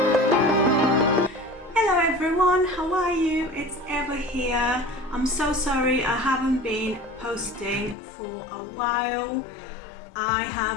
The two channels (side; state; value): right; drops out; at 8.0 s